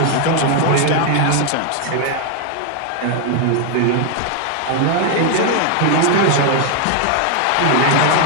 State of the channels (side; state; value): both; different; correlation 0.00